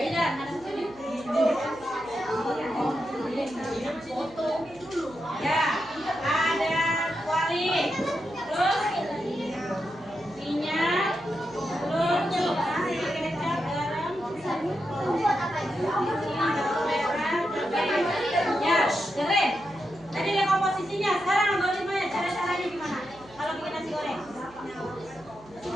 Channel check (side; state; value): right; noise; hum, 24 dB below the sound